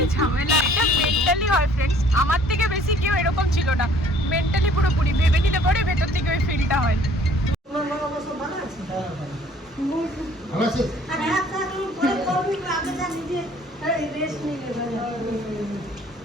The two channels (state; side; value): normal; both; correlation 0.56